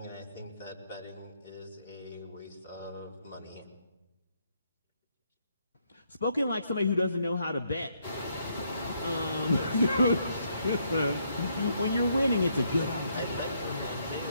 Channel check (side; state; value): both; inverted; correlation -0.74